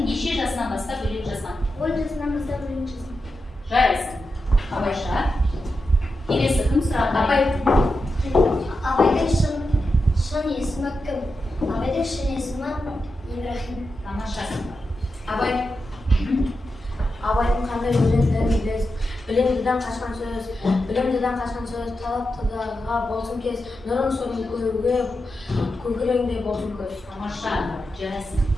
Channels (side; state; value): both; normal; correlation 0.89